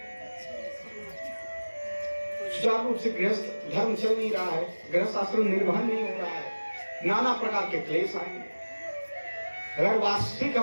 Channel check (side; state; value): both; inverted; correlation -1.00